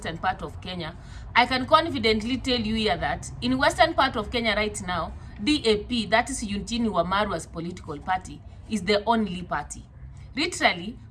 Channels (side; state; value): both; identical; correlation 1.00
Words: part of Kenya, I can confidently tell you here that in western part of Kenya right now, DAP, that is Eugene Wamalwa's political party, is the only party. Literally,